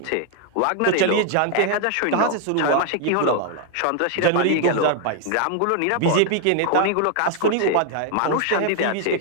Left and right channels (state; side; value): different; both; correlation 0.00